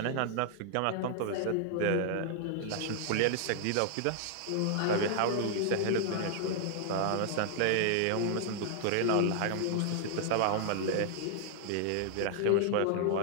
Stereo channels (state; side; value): different; both; correlation 0.00